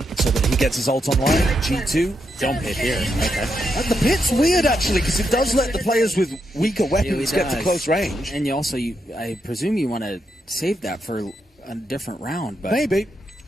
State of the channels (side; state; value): both; normal; correlation 0.82